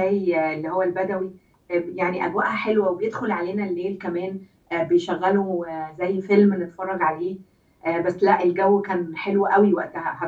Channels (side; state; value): both; identical; correlation 1.00